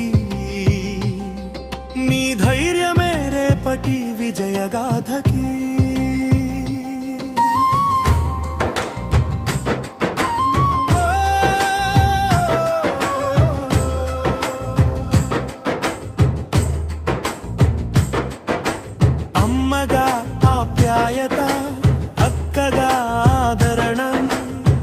నీ ధైర్యమే రేపటి విజయగాథకి. అమ్మగా ఆప్యాయత, అక్కగా ఆదరణ,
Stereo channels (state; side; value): identical; both; correlation 1.00